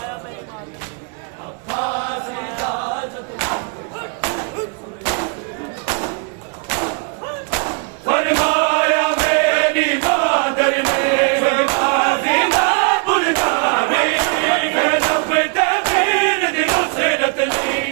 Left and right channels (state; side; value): quieter; left; 37.5 dB